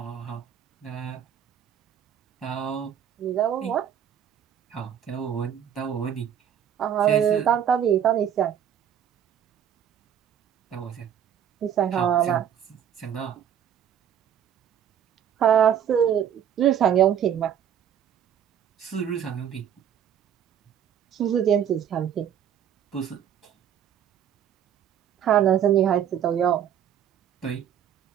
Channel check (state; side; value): quieter; left; 9.2 dB